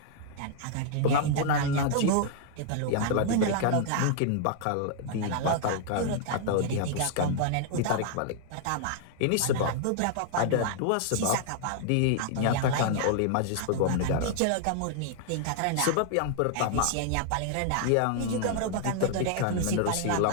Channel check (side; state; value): both; different; correlation 0.00